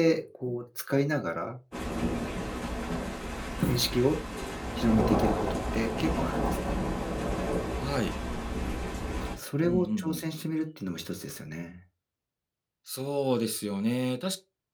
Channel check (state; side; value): identical; both; correlation 1.00